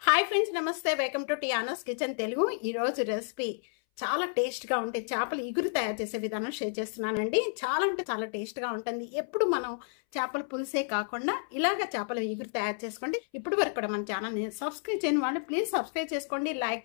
Hi friends, నమస్తే. Welcome to Tiana's kitchen Telugu. ఈరోజు recipe చాలా టేస్ట్గా ఉంటే చేపల ఇగురు తయారు చేసే విధానం షేర్ చేస్తున్నానండి. చాలా అంటే చాలా టేస్ట్గా ఉంటుంది. ఎప్పుడు మనం చేపల పులుసే కాకుండా ఇలాగ చేపల ఇగురు తయారు చేసుకోండి. ఇప్పుడు వరకు కూడా మన ఛానల్ని సబ్స్క్రైబ్ చేయని వాళ్ళు ప్లీజ్ సబ్స్క్రైబ్ చేసుకోండి,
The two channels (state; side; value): silent; right; 57 dB below the other